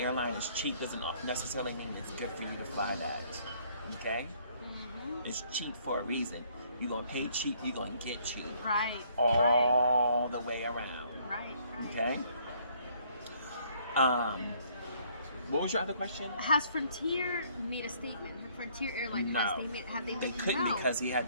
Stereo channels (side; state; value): both; inverted; correlation -0.63